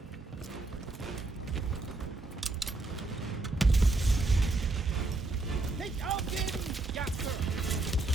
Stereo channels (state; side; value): quieter; left; 3.1 dB